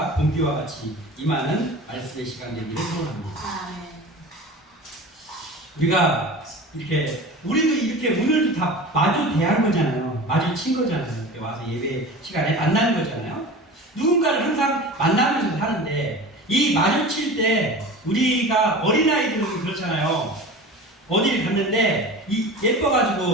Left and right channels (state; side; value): normal; both; correlation 0.35